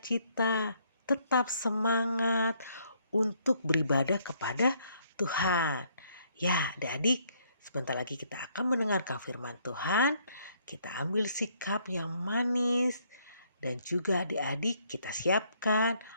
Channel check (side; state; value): both; inverted; correlation -0.68